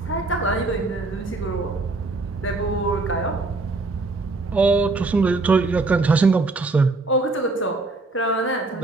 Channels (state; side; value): quieter; left; 3.4 dB